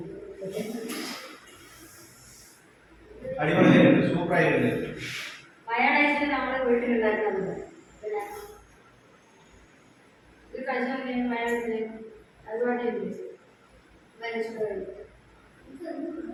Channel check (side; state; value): both; identical; correlation 1.00